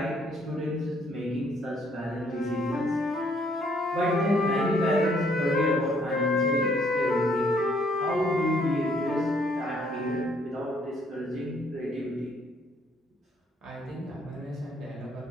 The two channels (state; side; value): normal; both; correlation 0.66